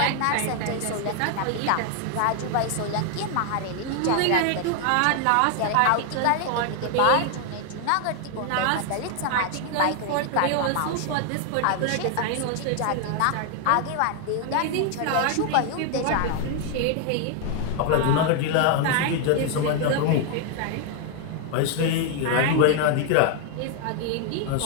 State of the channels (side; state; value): both; different; correlation 0.00